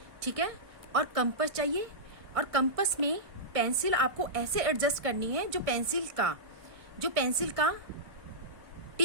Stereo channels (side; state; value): left; late; 1.5 ms